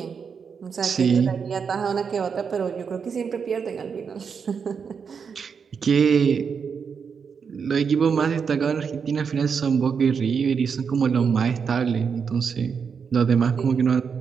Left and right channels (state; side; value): quieter; left; 6.2 dB